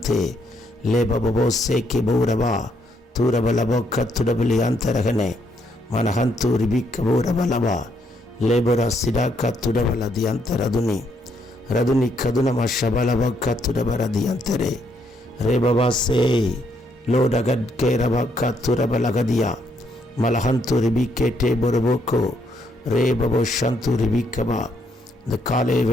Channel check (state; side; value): normal; both; correlation 0.73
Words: ले बाबो से के बौरबा तूरबलबो कत्तुडबली अंतरगने मनहंतु रिबिकबोरबलबा लेबरा सिडा कत्तुडबलदि अंतरदुनि रदुनि कदुनम शबलबो कत्तुडबरदि अंतरे रे बाबा से लोडगड के रबा कत्तुरबलगदिया मलहंतु रिबिकेटे बोरबोको रे बाबो शंतु रिबिकबा. இந்த காலை